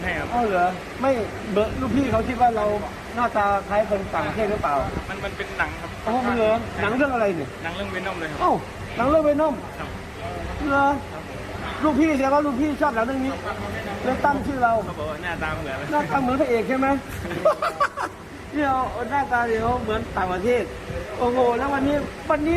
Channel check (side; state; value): both; identical; correlation 1.00